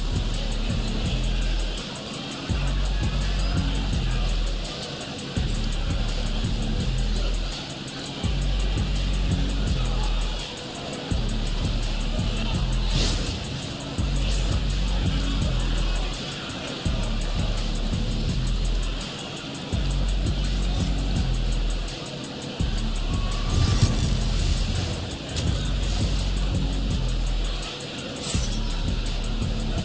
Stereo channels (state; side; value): identical; both; correlation 1.00